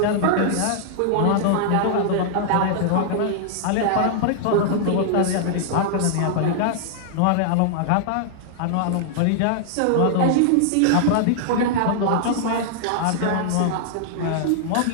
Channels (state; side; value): different; both; correlation -0.01